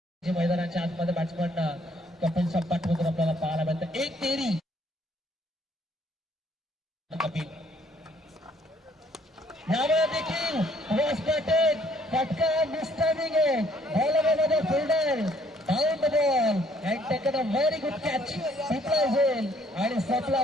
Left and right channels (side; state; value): both; normal; correlation 0.64